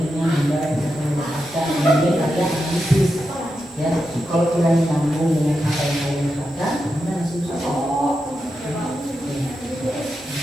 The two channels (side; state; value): both; normal; correlation 0.87